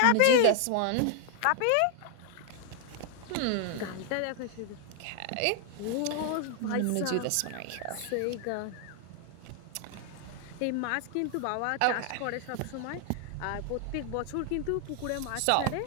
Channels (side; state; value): both; different; correlation 0.00